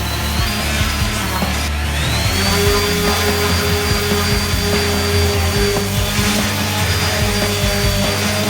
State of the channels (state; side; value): identical; both; correlation 1.00